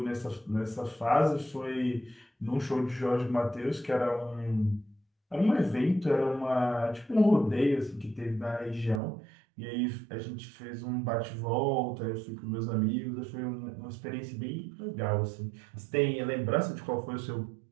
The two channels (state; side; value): drops out; left; at 9.0 s